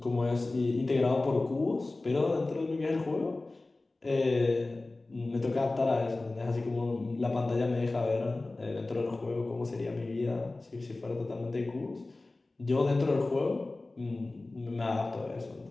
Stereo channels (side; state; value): right; quieter; 3.1 dB